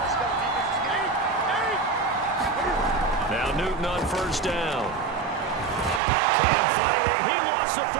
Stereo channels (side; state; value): left; drops out; at 6.0 s